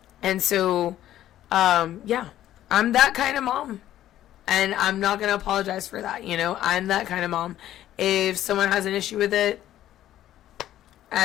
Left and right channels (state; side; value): quieter; right; 12.7 dB